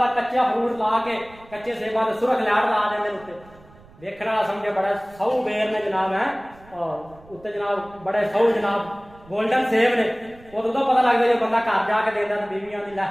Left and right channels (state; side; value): noise; right; rumble, 24 dB below the sound